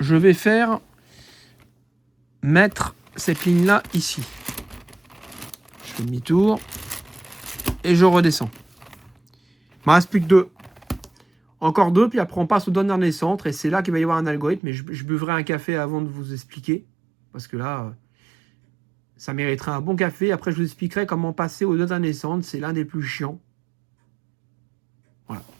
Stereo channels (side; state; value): left; drops out; at 14.6 s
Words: vais mettre cette ligne-là ici. Je fais demi-tour et je redescends. Il me reste plus que 2. Encore 2, puis après on passe au dernier centre et c'est là qu'il va y avoir un algorithme. Mais je buvrai un café avant de vous expliquer. Parce que là, ça mériterait un bon café. Après, je vous expliquerai comment passer au dernier centre. C'est l'un des plus chiants. Voilà.